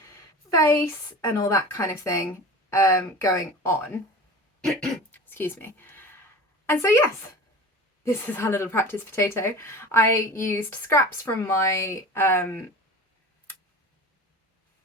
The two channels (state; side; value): normal; both; correlation 0.36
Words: face and all that kind of thing going on. Excuse me. And so yes, this is our little practice potato. I used scraps from my